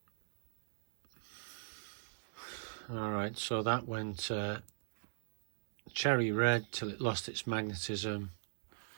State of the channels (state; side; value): silent; left; digital silence